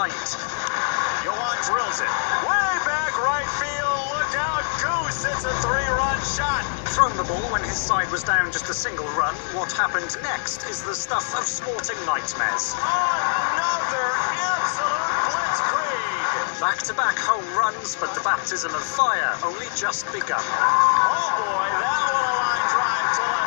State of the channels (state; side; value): silent; right; digital silence